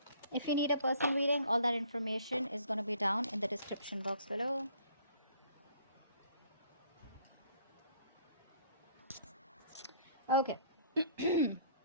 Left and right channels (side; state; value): both; inverted; correlation -0.58